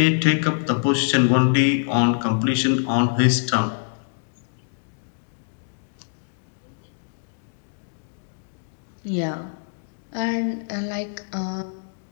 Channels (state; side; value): silent; right; digital silence